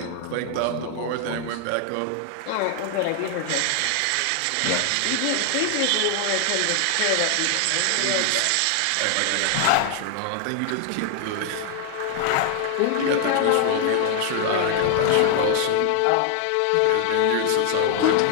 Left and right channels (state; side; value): different; both; correlation 0.00